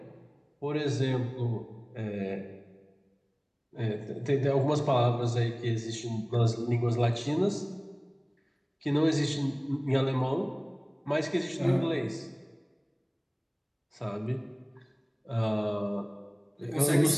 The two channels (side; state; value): both; identical; correlation 1.00